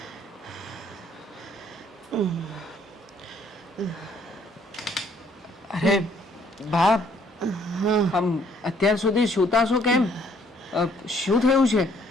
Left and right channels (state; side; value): normal; both; correlation 0.64